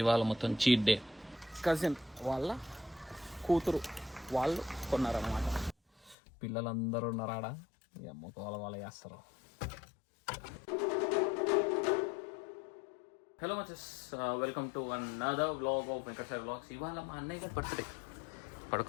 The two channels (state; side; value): drops out; right; at 6.2 s